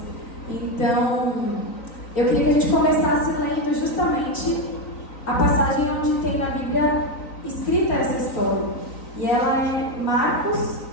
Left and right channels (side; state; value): right; late; 3.9 ms